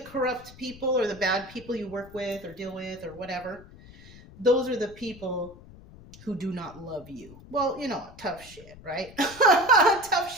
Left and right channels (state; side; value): noise; left; rumble, 20 dB below the sound